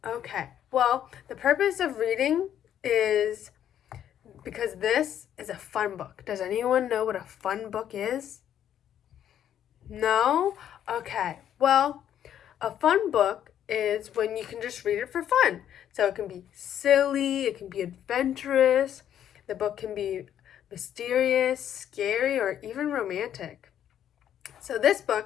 Okay. Well, the purpose of reading is because this is a fun book. Does anyone know what a fun book is? No? Okay. Well, a fun book is when you can just read it for fun. So it can be silly, it can be adventurous, the book can be mysterious, scary, or even romantic. So this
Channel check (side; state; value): right; quieter; 10.2 dB